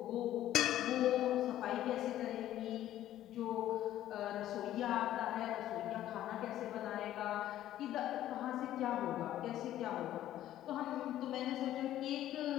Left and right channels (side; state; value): right; quieter; 12.9 dB